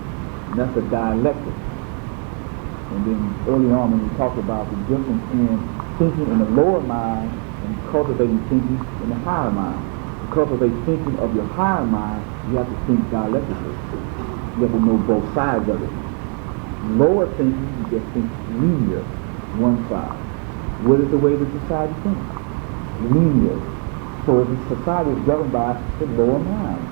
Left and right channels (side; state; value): left; quieter; 40.0 dB